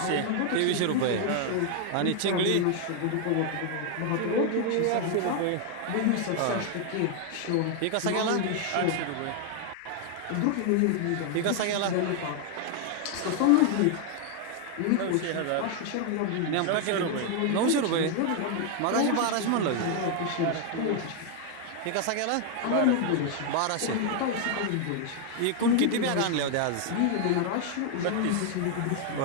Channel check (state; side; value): different; both; correlation 0.00